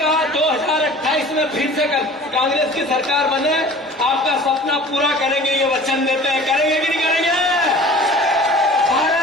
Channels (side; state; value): both; normal; correlation 0.44